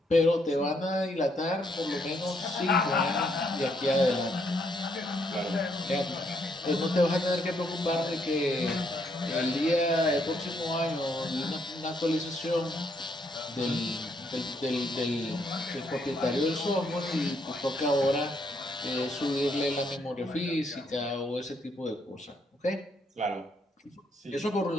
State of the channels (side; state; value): both; normal; correlation 0.73